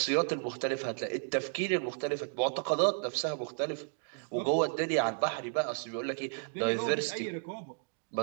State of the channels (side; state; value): left; silent; 56 dB below the other